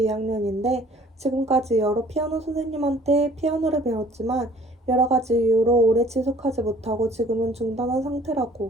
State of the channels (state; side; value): normal; both; correlation 0.54